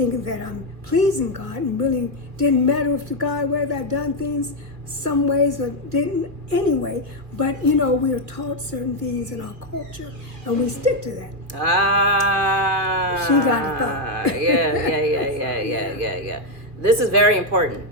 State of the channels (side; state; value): left; late; 2.5 ms